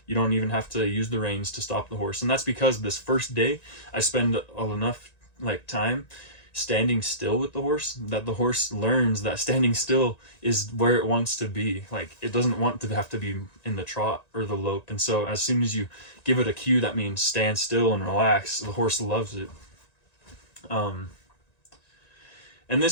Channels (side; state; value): right; late; 1.9 ms